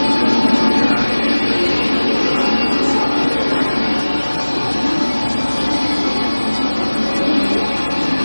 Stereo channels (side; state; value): both; inverted; correlation -1.00